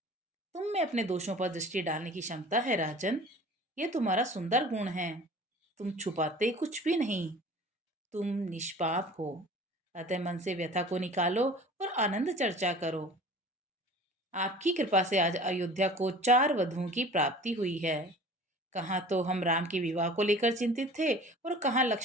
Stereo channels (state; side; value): normal; both; correlation 0.44